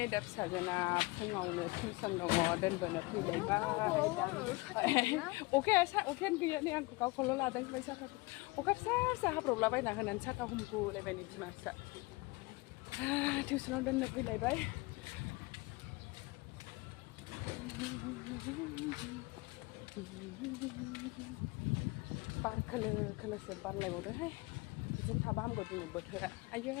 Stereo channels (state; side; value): quieter; right; 23.9 dB